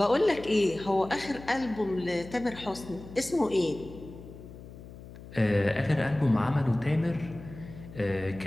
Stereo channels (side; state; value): left; noise; hum, 16 dB below the sound